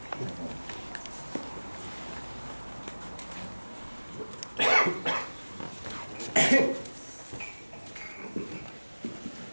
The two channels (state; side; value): inverted; both; correlation -1.00